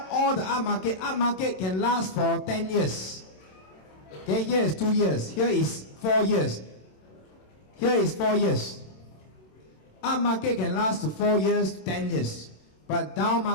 all the up market can last for 10 years. Okay, here is 2 years. Here is 4 years. Here is 4 years. Up market can last to 4 years, 10 years. But down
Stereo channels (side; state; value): right; late; 27 ms